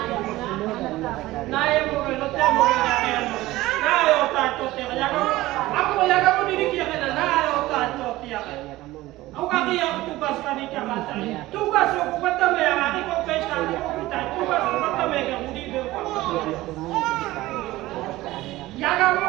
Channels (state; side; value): quieter; left; 17.6 dB